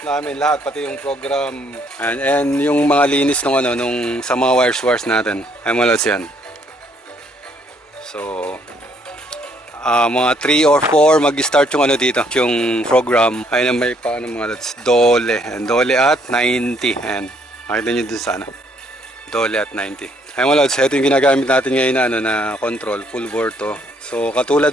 namin lahat, pati yung program and yung mga linis nung sa mga wires natin. Ay malos yan. So mga 3 or 4 mag-start yung dito, yung program. Ay na may paano mga lods, Dole at 90. And makita nyo dun sa Dole at 90. Ay mga lods, ito yung ginagamit natin ngayon na control, full board to. So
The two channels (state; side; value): normal; both; correlation 0.67